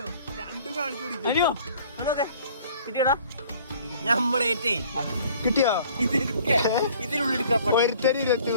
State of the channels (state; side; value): inverted; both; correlation -0.53